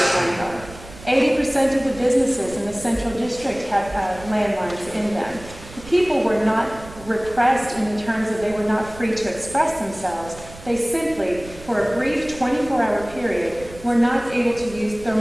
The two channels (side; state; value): right; noise; rumble, 18 dB below the sound